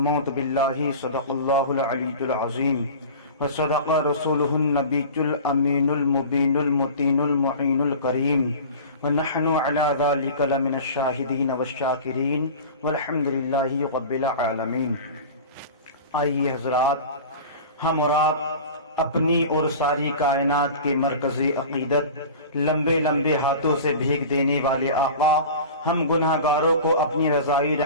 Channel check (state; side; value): inverted; both; correlation -0.36